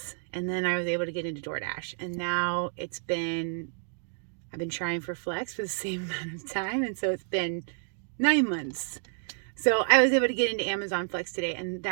And then I was able to get into DoorDash. And now I've been trying for Flex for the same amount of time. And so it's been 9 months. So I was able to get into Amazon Flex today. And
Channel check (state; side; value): silent; left; digital silence